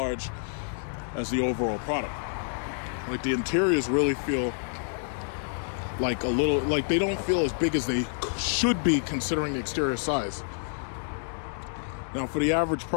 as the overall product. Like the interiors really feel like a little, like they don't feel as big as they should be considering the exterior size. Now for the average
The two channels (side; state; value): right; silent; digital silence